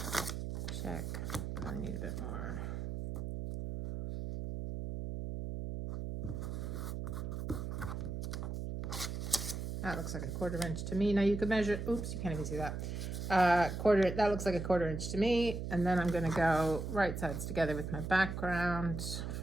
Check. Probably need a bit more. That looks like a 1/4 inch to me. Now you could measure, oops, you can't even see that. That looks like a 1/4 inch to me. And then I'm going to go right sides together with my background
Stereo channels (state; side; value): noise; right; hum, 4 dB below the sound